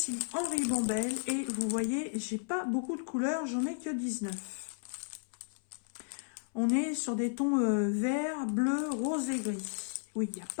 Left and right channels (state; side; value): silent; right; 55 dB below the other